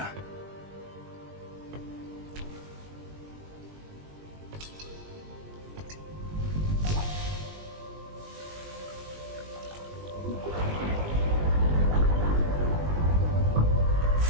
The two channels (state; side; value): late; left; 20 ms